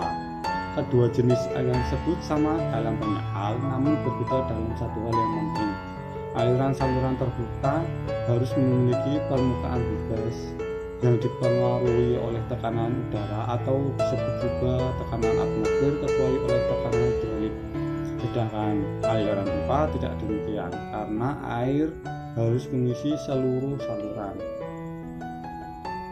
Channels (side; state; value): both; identical; correlation 1.00